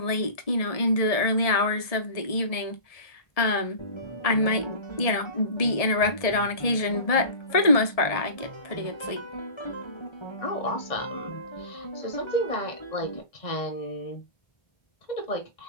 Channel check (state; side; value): late; right; 1.7 ms